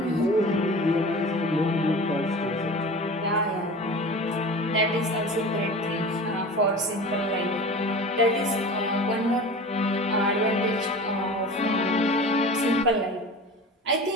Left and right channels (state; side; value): normal; both; correlation 0.36